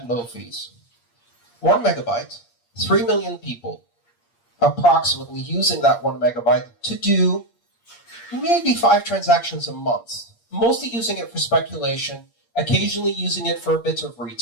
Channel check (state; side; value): late; right; 8.6 ms